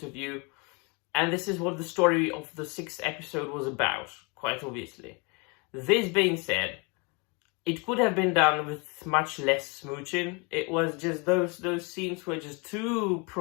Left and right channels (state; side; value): quieter; right; 31.2 dB